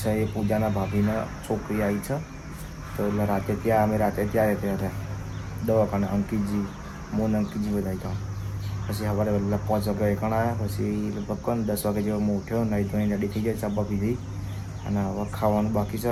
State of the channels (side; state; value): both; identical; correlation 1.00